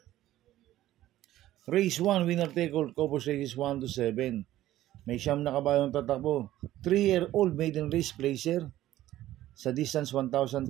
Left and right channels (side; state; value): left; quieter; 14.3 dB